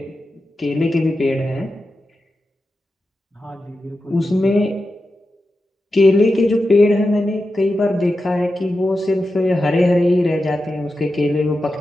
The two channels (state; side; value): normal; both; correlation 0.91